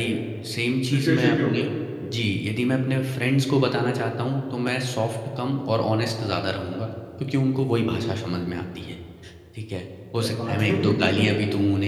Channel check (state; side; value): identical; both; correlation 1.00